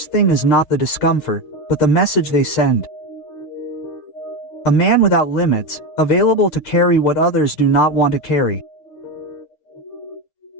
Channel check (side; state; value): right; late; 8.6 ms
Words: thing is not the discomfort, but the message they send. A man without limits, available to carry what others do not want to carry.